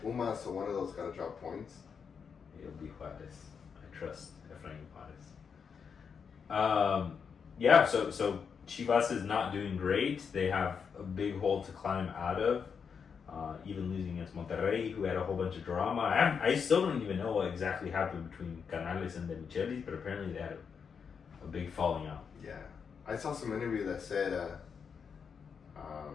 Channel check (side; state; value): right; quieter; 6.4 dB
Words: Pumas, so one of those got to drop points. It'll be Juarez. I trust Efrain Juarez. So Chivas is not doing great. They have a big hole to climb out of. Even losing against Monterrey, who had a whole bunch of drama. I still don't even know what exactly happened between Canales and De Michelis, but apparently they had a big falling out. Yeah. I saw some interview that said,